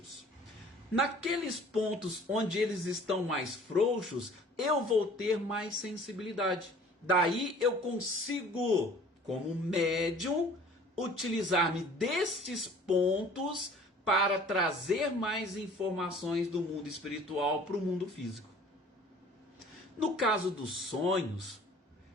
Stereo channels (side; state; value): both; normal; correlation 0.50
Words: Naqueles pontos onde eles estão mais frouxos, eu vou ter mais sensibilidade. Daí eu consigo, como médium, utilizar-me destes pontos para trazer mais informações do mundo espiritual para o mundo físico. No caso dos sonhos,